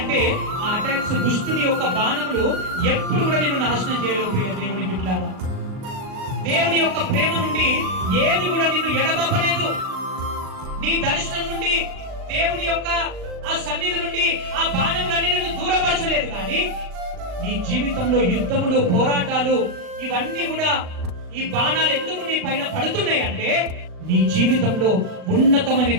ఆ అటాక్స్ దుష్టుని యొక్క బాణములు ఎప్పుడు కూడా నిన్ను నాశనం చేయలేవు. ప్రియ దేవుని బిడ్డలారా, దేవుని యొక్క ప్రేమ నుండి ఏది కూడా నిన్ను ఎడబాపలేదు. నీ దర్శనం నుండి, దేవుని యొక్క ఆ సన్నిధి నుండి ఆ బాణములన్నీ నిన్ను దూరపరచలేదు. కానీ నీ జీవితంలో యుద్ధములు, పోరాటాలు, ఇవన్నీ కూడా ఈ బాణాలు ఎందుకు నీ పైన పడుతున్నాయి అంటే, నీ జీవితంలో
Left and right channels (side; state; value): left; late; 39 ms